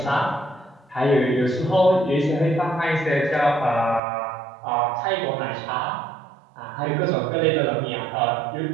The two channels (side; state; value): left; drops out; at 4.0 s